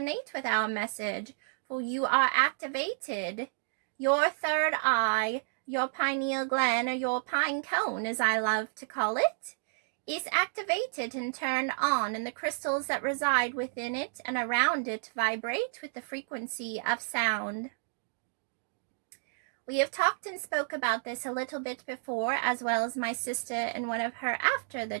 with our message, for you are activated. Your third eye, your pineal gland, or your pine cone, as I love to call it, is activated and turned on, and the crystals that reside within it and around it vibrate with the frequency of sound. We have talked and spoke about this a little bit before, as well as my sister in one of her After the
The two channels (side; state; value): left; silent; digital silence